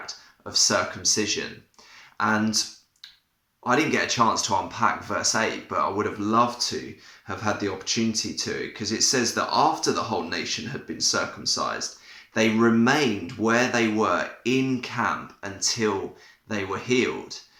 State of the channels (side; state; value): both; identical; correlation 1.00